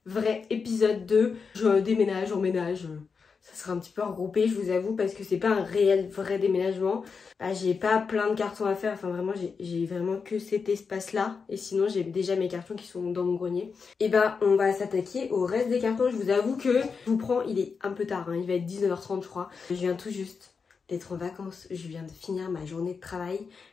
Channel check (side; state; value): right; quieter; 5.4 dB